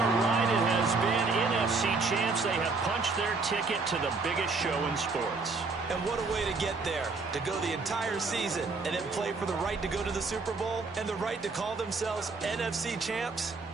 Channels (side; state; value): left; quieter; 4.1 dB